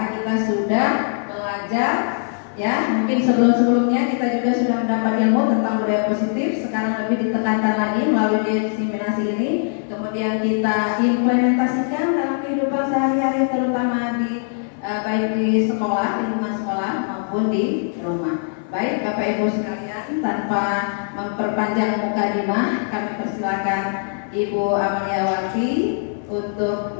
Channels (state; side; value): silent; right; 57 dB below the other